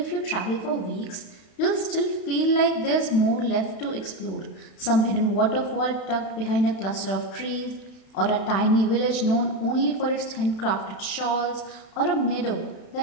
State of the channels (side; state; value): right; late; 32 ms